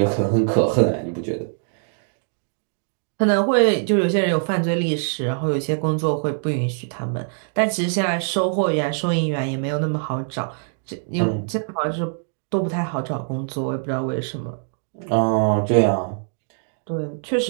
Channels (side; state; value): left; silent; 63 dB below the other